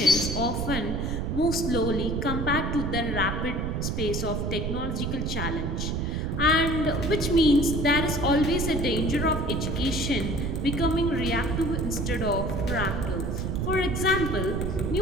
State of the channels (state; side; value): noise; right; rumble, 1 dB below the sound